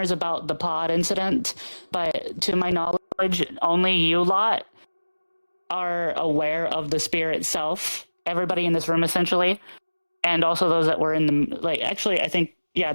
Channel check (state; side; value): inverted; both; correlation -1.00